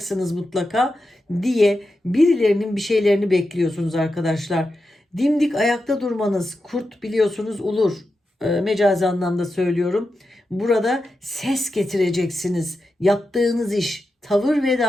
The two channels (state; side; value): normal; both; correlation 0.89